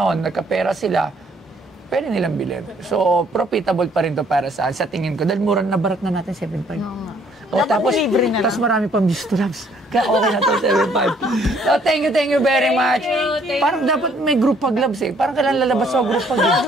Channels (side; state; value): both; normal; correlation 0.64